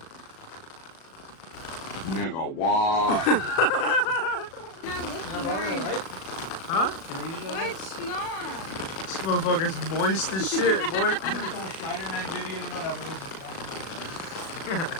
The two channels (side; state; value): right; late; 37 ms